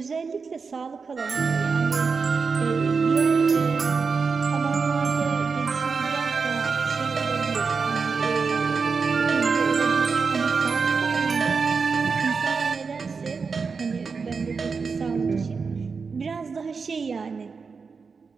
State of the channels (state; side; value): quieter; left; 5.1 dB